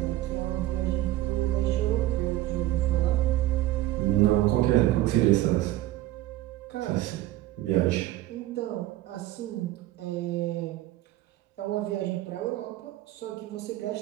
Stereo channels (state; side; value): quieter; left; 15.2 dB